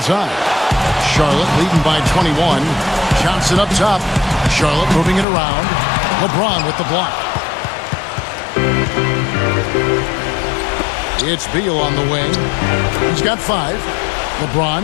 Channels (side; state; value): right; drops out; at 5.2 s